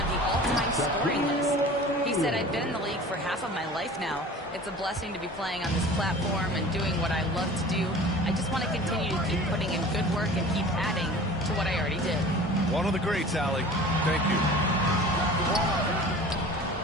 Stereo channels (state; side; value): normal; both; correlation 0.41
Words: the all-time scoring list. He said, I've been in the league for half of my life now. It's a blessing to be playing on this platform and doing what I love to do. I just want to continue to keep putting in good work and keep adding to what I already did. One of the greats, Allie. Thank you.